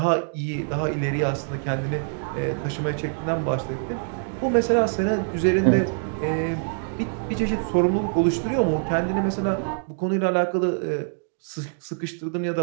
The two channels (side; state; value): left; silent; digital silence